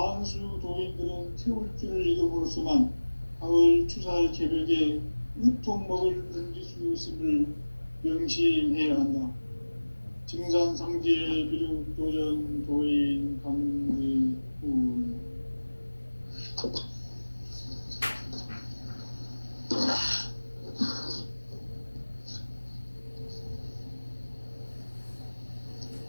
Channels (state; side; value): inverted; both; correlation -1.00